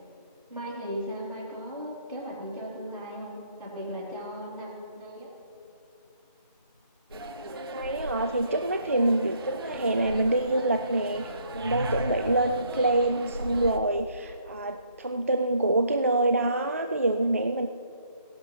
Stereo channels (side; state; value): both; inverted; correlation -0.66